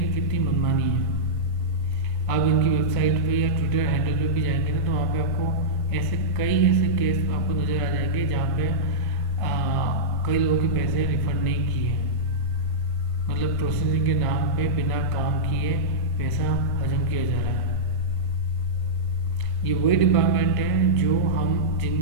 कि कितनी मनमानी है। आप इनकी वेबसाइट पे या ट्विटर हैंडल पे भी जाएंगे ना तो वहाँ पे आपको कई ऐसे केस आपको नज़र आ जाएंगे जहाँ पे कई लोगों के पैसे रिफंड नहीं किए, मतलब प्रोसेसिंग के नाम पे बिना काम किए पैसा हजम किया जा रहा है। ये वही डिपार्टमेंट है जो हम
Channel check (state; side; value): late; right; 1.5 ms